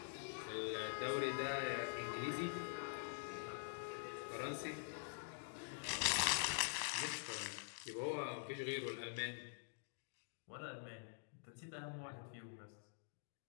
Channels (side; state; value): right; silent; digital silence